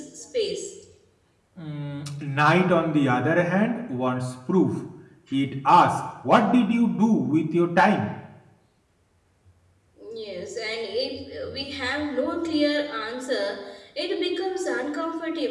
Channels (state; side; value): identical; both; correlation 1.00